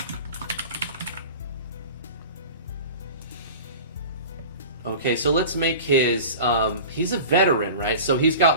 Okay, so let's make his, he's a veteran, right? So he's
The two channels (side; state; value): both; inverted; correlation -0.36